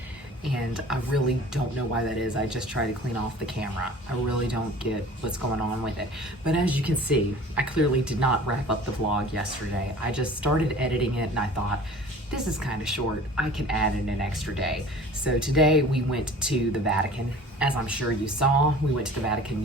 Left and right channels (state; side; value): normal; both; correlation 0.44